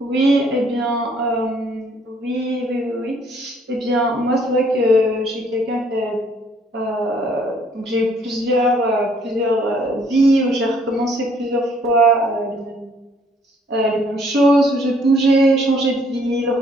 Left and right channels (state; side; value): normal; both; correlation 0.63